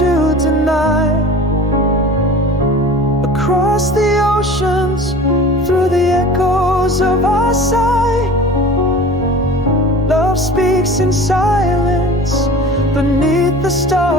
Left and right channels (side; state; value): both; normal; correlation 0.40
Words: to deny. Across the oceans, through the echoes of our sigh, love speaks in silence beneath the